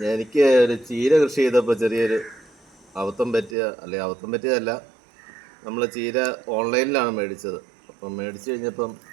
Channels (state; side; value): drops out; left; at 3.6 s